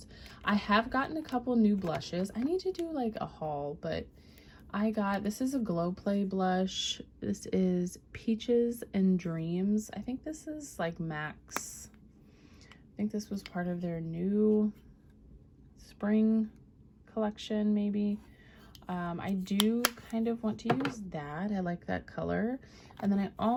I have gotten a couple new blushes. I need to do like a haul, but this is a Glow Play blush. This is Peaches and Dreams. I think this is like Max. I think this was part of their new spring collection, maybe. I do kind of want to use that. I like that color. And then I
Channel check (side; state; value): both; identical; correlation 1.00